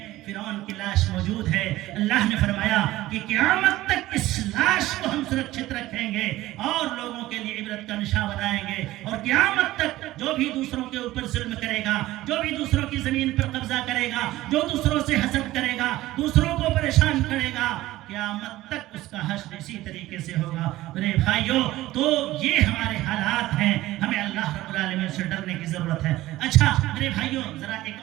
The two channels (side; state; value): left; quieter; 16.5 dB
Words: فرعون کی لاش موجود ہے. اللہ نے فرمایا کہ قیامت تک اس لاش کو ہم سرکشت رکھیں گے اور لوگوں کے لیے عبرت کا نشان بنائیں گے. اور قیامت تک جو بھی دوسروں کے اوپر ظلم کرے گا، جو بھی دوسروں کی زمین پر قبضہ کرے گا، جو دوسروں سے حسد کرے گا، دوسروں کو پریشان کرے گا، قیامت تک اس کا حشر اسی طریقے سے ہوگا. میرے بھائیوں، تو یہ ہمارے حالات ہیں، ہمیں اللہ رب العالمین سے ڈرنے کی ضرورت ہے. اچھا میرے بھائیوں، ذرا